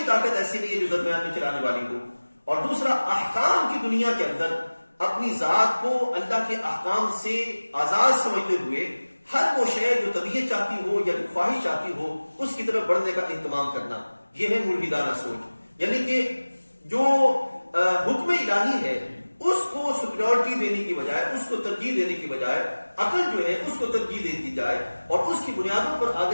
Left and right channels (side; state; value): both; inverted; correlation -1.00